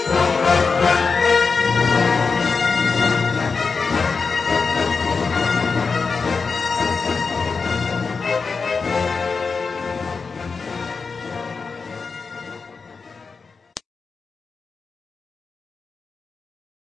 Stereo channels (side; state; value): right; quieter; 4.8 dB